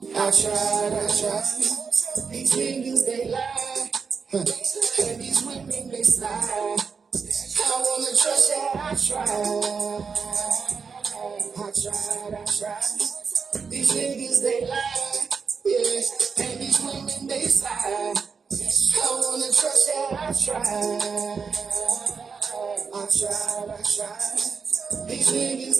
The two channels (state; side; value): quieter; left; 5.6 dB